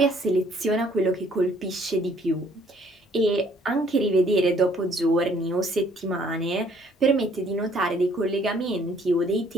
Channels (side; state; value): both; normal; correlation 0.62